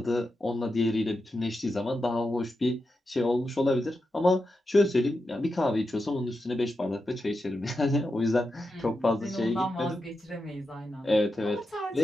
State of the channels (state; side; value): normal; both; correlation 0.88